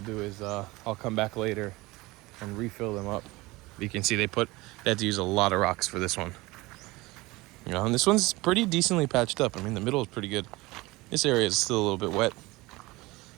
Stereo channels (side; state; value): left; quieter; 21.5 dB